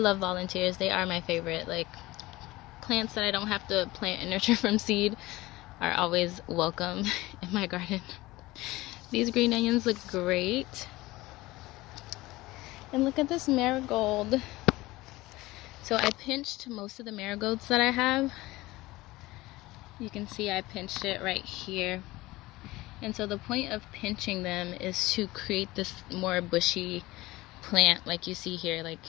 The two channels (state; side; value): quieter; right; 19.3 dB